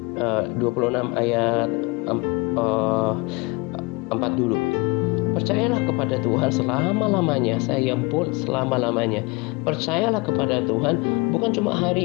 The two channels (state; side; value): quieter; right; 26.4 dB